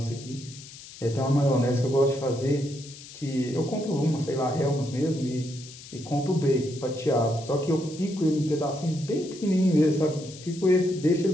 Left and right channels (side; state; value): left; noise; hiss, 17 dB below the sound